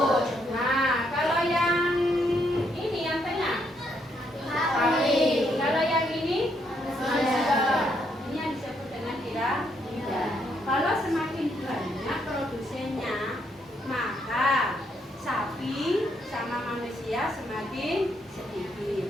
Nah, kalau yang ini yang tengah? Sapi. Kalau yang ini? Manusia. Ini yang disebut dengan piramida. Kalau semakin banyak produsennya, maka sapi sama manusia semakin sedikit.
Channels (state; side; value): normal; both; correlation 0.74